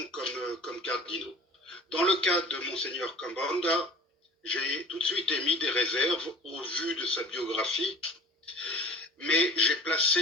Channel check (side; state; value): both; normal; correlation 0.43